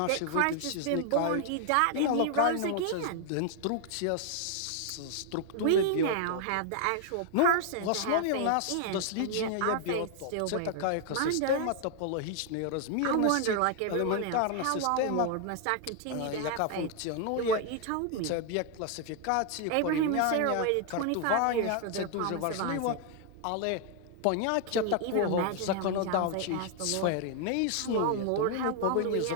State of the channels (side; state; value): both; different; correlation 0.00